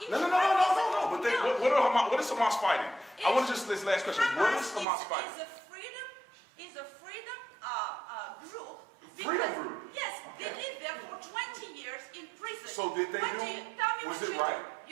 No. But what is Hamas fighting? I want to just this last question. What is Hamas fighting? Is a freedom group. Freedom group? Yes, Okay. they lived there for 20 years in prison. So did they Tell me was what it you right? do.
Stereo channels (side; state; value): left; drops out; at 4.9 s